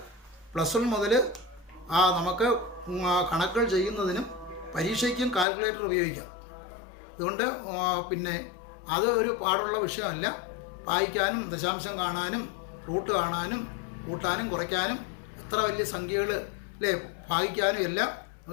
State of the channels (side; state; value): right; drops out; at 5.5 s